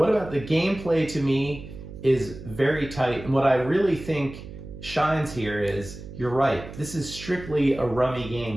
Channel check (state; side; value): noise; right; hum, 13 dB below the sound